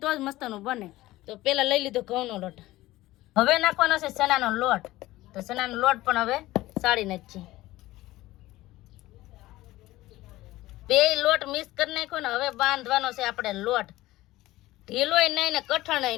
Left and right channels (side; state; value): right; quieter; 17.2 dB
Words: જ મસ્તનું બને. તો પેલા લઈ લીધો ઘઉંનો લોટ, હવે નાખવાનો છે ચણાનો લોટ. તો ચણાનો લોટ પણ હવે સાળી નાખીએ. બે લોટ મિક્સ કરી નાખ્યો ને હવે બાંધવાનો છે આપણે લોટ. ઢીલોય નહીં ને કઠણાય